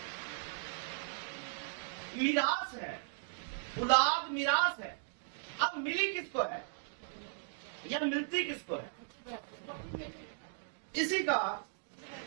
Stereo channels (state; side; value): silent; left; digital silence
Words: میراث ہے، اولاد میراث ہے۔ اب ملی کس کو ہے یا ملتی کس کو ہے؟ اسی کا